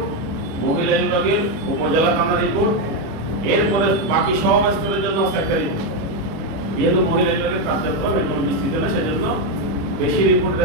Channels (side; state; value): left; late; 25 ms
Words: মহিলা বিভাগের উপজেলা থানা রিপোর্ট, এরপরে বাকি সব স্তরের জন্য হচ্ছে একটা রিপোর্ট। যেহেতু মহিলা বিভাগের কার্যক্রম এখন বিস্তৃত না, সেজন্য বেশি রিপোর্ট